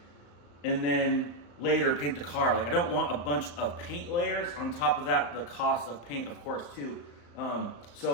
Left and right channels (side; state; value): right; late; 35 ms